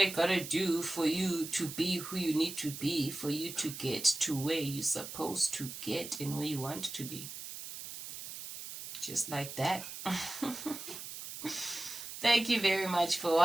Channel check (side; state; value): right; noise; hiss, 10 dB below the sound